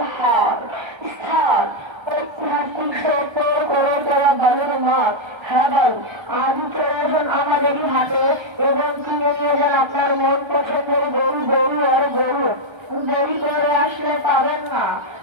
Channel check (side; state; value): left; late; 1.3 ms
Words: হাট স্থান ঐতিহাসিক সত্য করে দেওয়া বালুর মাঠ। হ্যাঁ ভাই, আজই চলে আসুন আমাদেরই হাটে এবং কিনে নিয়ে যান আপনার মন পছন্দের গরু আর গরু। দেরি করে আসলে পাবেন না,